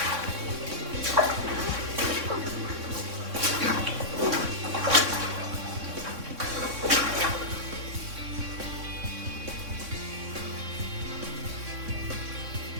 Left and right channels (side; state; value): left; late; 3.6 ms